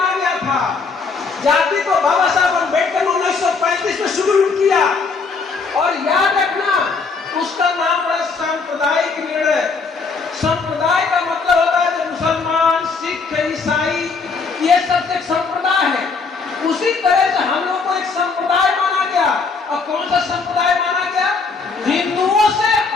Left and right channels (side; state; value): right; quieter; 4.6 dB